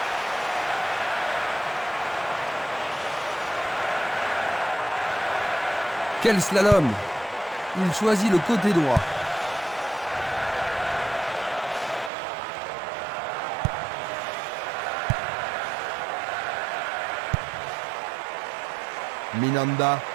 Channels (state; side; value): drops out; left; at 12.1 s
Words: Quel slalom! Il choisit le côté droit. Minanda.